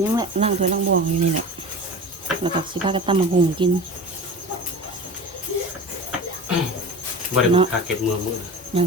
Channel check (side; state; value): both; normal; correlation 0.33